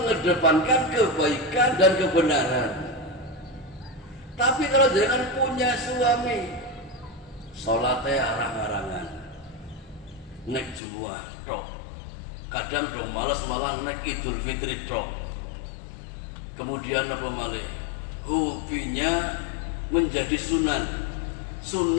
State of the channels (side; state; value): right; drops out; at 10.8 s